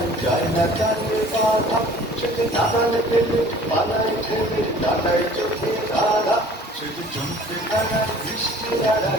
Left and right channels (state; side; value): normal; both; correlation 0.49